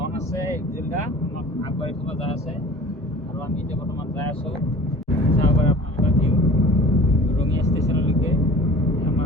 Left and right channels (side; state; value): both; normal; correlation 0.44